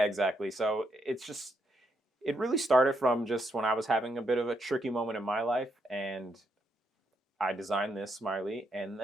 exactly. So It really started from just when I was having a bit of a tricky moment in my life, and I designed this smiley. And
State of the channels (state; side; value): normal; both; correlation 0.78